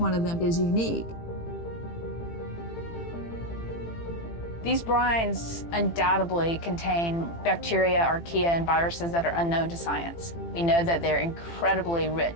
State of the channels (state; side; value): late; right; 18 ms